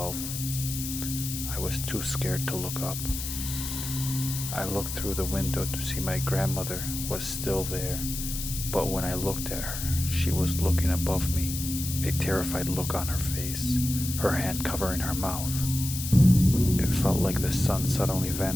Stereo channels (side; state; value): left; noise; hiss, 6 dB below the sound